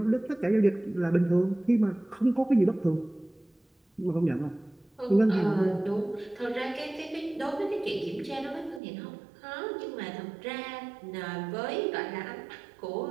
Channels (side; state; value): left; drops out; at 8.8 s